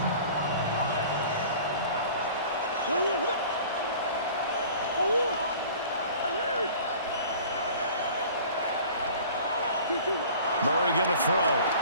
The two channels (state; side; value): inverted; both; correlation -0.45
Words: Murray going to throw.